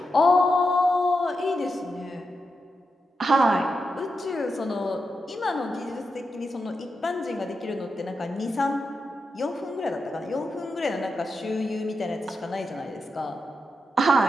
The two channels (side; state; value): both; normal; correlation 0.87